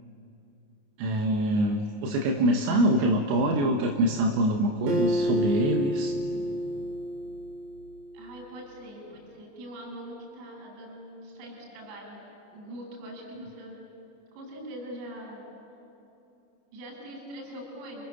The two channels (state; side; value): late; left; 28 ms